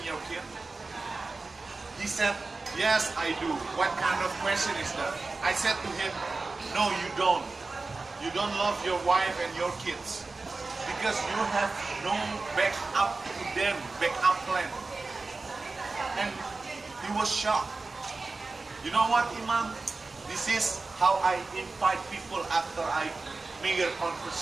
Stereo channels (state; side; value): quieter; left; 3.7 dB